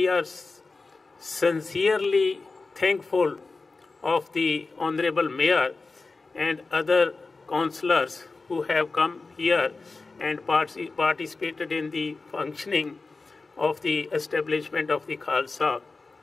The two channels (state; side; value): quieter; right; 3.8 dB